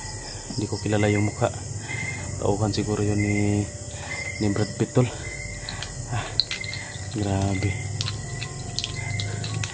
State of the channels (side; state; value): both; identical; correlation 1.00